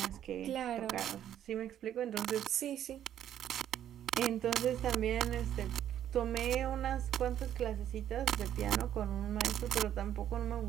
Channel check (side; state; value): left; quieter; 10.7 dB